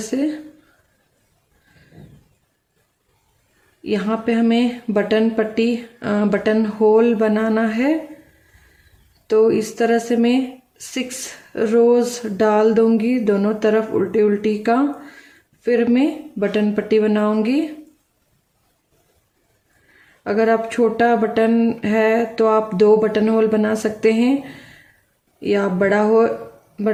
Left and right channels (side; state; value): both; identical; correlation 1.00